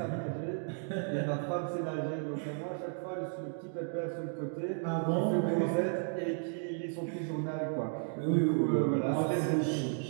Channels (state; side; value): silent; left; 55 dB below the other